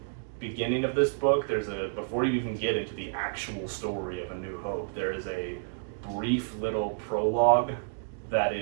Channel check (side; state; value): left; silent; digital silence